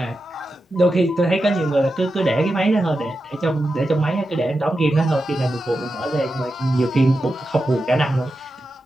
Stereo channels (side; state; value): both; normal; correlation 0.90